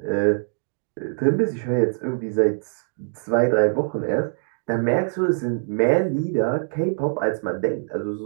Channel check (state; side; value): silent; left; digital silence